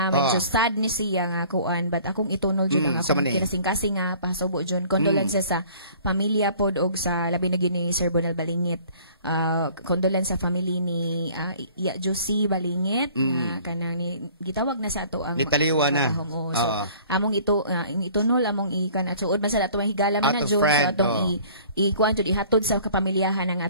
Medyo sad ni siya nga kuan but akong itunol June nga akong kinasing-kasing nga pasubo June. Condolences sa pamilya pod og sa labi na gyud ni Sir Bonel Balingit. Condolence sa family ni Iya Josie Balingit kanang ni gitawag na sa ato ang nitaliwa na so, among itunol among ikan at suod man sa ato ang higala man na June sa atong ikuan jud ihatod sa kapamilyahan ng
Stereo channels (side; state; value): both; inverted; correlation -0.52